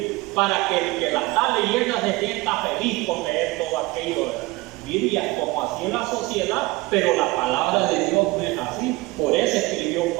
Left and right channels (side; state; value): left; quieter; 21.5 dB